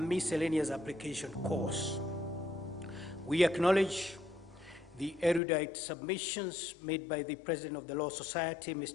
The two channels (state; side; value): drops out; right; at 5.4 s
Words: application course. We acknowledge the erudite submissions made by the President of the Law Society,